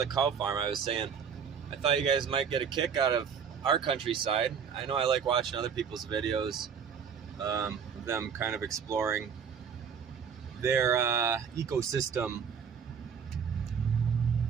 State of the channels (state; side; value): quieter; left; 7.1 dB